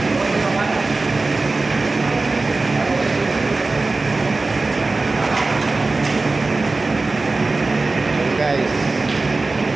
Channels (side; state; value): left; quieter; 3.5 dB